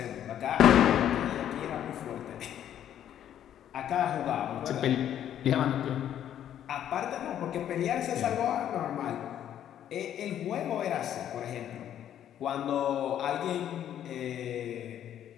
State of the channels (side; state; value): right; quieter; 10.5 dB